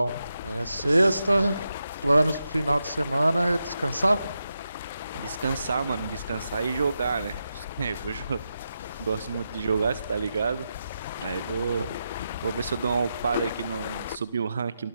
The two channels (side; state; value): both; inverted; correlation -0.87